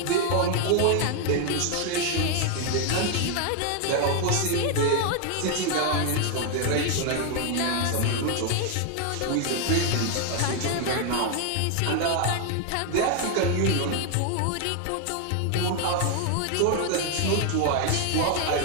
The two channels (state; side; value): different; both; correlation 0.01